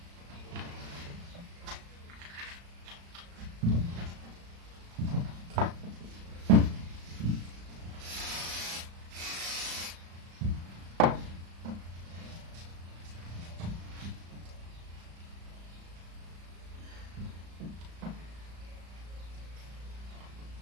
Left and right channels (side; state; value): left; late; 35 ms